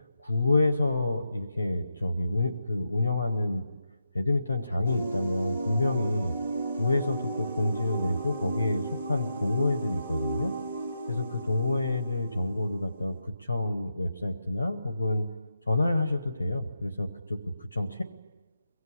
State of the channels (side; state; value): both; inverted; correlation -0.86